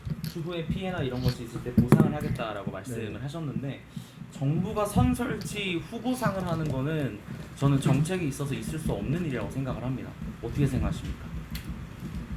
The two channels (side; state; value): both; identical; correlation 1.00